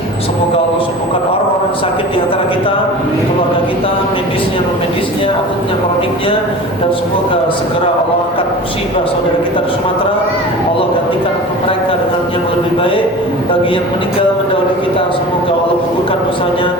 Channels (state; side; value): normal; both; correlation 0.36